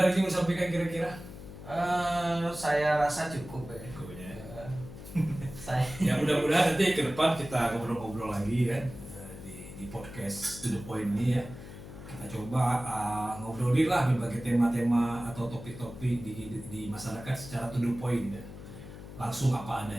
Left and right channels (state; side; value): noise; left; hum, 13 dB below the sound